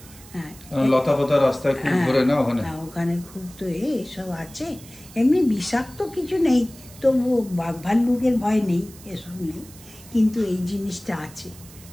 হ্যাঁ, লতা পাতা রাস্তায় খুব ঘোরে না ওখানে? ওখানে খুব তো এসব আছে। এমনি বিষাক্ত কিছু নেই, তবু বাঘ ভাল্লুকের ভয় নেই, এসব নেই, কিন্তু এই জিনিসটা আছে,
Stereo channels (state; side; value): noise; right; hiss, 20 dB below the sound